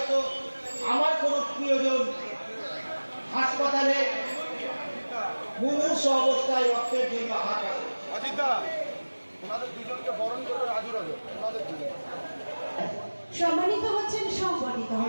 আমার কোনো প্রিয়জন হাসপাতালে মুমূর্ষ অবস্থায় রক্তের জন্য হাত আছে। সম্মানিত হচ্ছেন, সংগঠিত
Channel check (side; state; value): both; inverted; correlation -1.00